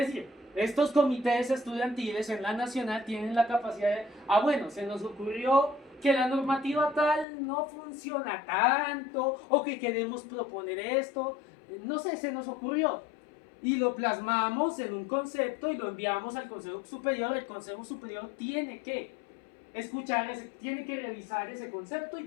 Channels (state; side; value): drops out; right; at 7.2 s